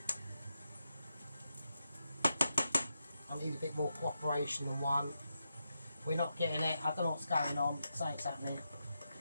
I need a bit more cooperation than 1. We're not getting it. I don't know what's going on. Something's happening.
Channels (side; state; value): both; inverted; correlation -0.86